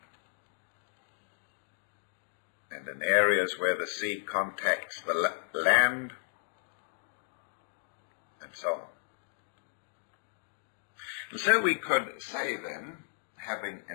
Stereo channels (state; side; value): silent; right; digital silence